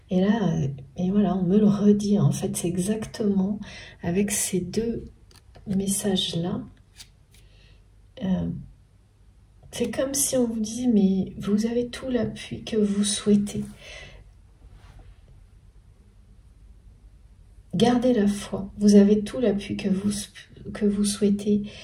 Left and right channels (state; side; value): identical; both; correlation 1.00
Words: Et là, et voilà, on me le redit, en fait, c'est exactement avec ces deux messages-là. C'est comme si on vous dit, mais vous avez tout l'appui que vous souhaitez. Gardez la foi, vous avez tout l'appui que vous souhaitez.